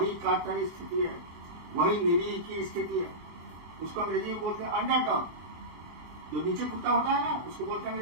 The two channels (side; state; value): left; late; 24 ms